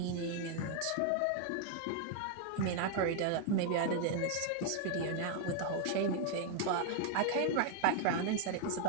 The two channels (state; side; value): different; both; correlation 0.00